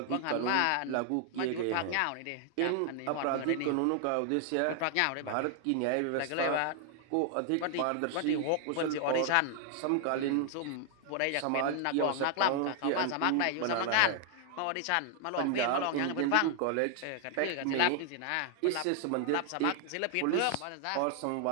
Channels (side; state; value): both; different; correlation 0.00